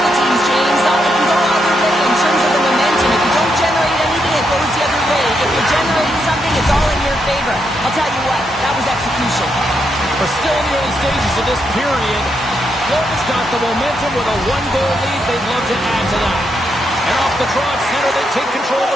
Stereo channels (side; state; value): both; normal; correlation 0.80